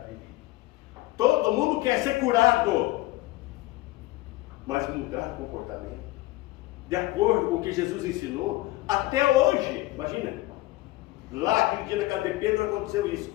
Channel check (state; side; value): quieter; right; 18.3 dB